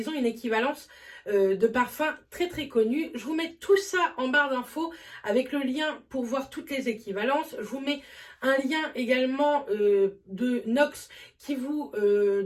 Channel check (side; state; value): both; identical; correlation 1.00